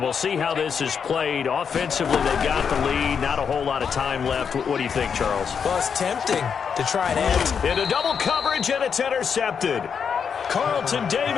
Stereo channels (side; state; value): right; quieter; 6.7 dB